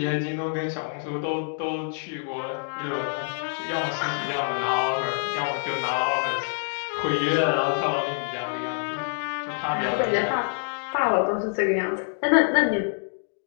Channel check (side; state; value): right; silent; 61 dB below the other